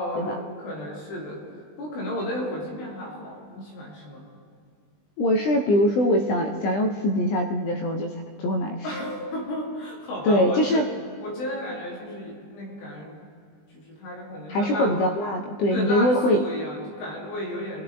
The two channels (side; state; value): right; late; 20 ms